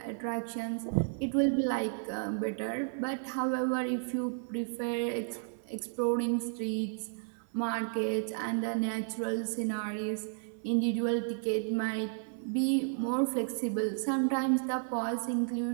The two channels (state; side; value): silent; left; 56 dB below the other